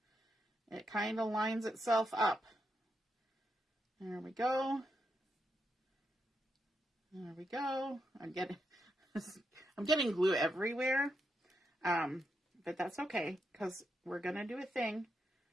it kind of lines itself up. There we go. There we go. I'm getting glue everywhere. But that's okay, because we're going to do a thing.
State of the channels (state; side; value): normal; both; correlation 0.83